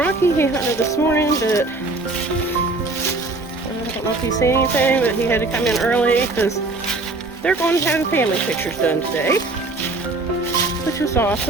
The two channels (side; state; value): left; quieter; 3.2 dB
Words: he hunted this morning, but I don't know if he's seen anything, but he had to come in early because they're going to have family pictures done today, which is